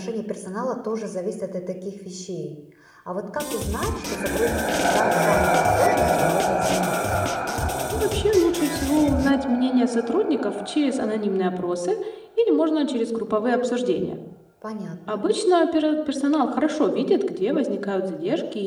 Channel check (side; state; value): both; identical; correlation 1.00